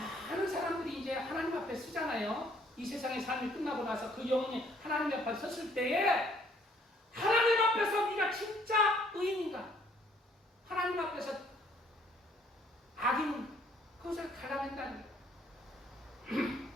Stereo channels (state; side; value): normal; both; correlation 0.63